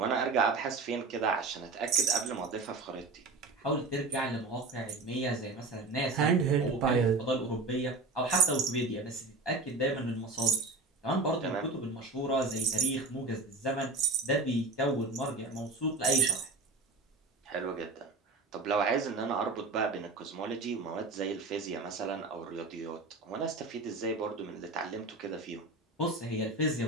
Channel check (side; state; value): left; quieter; 3.5 dB